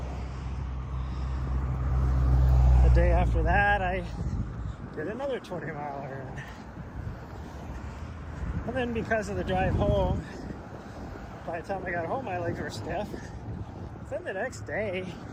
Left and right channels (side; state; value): both; identical; correlation 1.00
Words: day after that, I did another 20-miler. And then because of the drive home, by the time I got home, my legs were stiff. Then the next day,